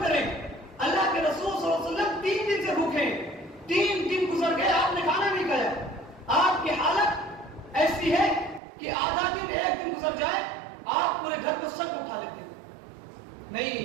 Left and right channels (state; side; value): drops out; left; at 8.6 s